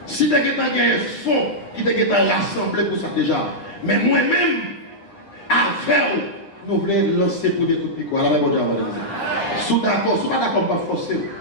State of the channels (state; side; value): late; right; 9.3 ms